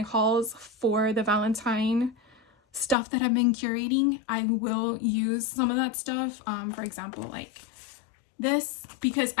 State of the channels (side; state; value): right; drops out; at 3.0 s